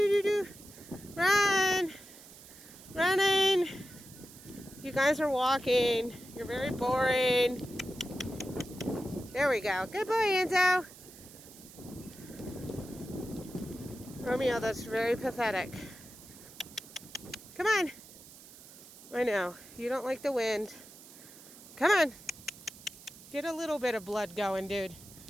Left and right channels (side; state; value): right; noise; hiss, 19 dB below the sound